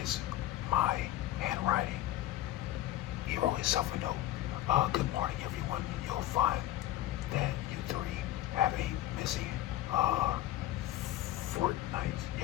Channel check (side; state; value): right; quieter; 14.1 dB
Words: is my handwriting. He wrote himself a note. Good morning, everyone. You'll find that you three have a missing fortnight.